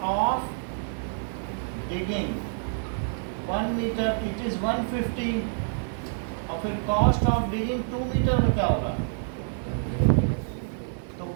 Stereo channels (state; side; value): silent; left; digital silence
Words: of digging 1 metre it is 150, और फिर कॉस्ट ऑफ डिगिंग 2 मीटर में क्या होगा, तो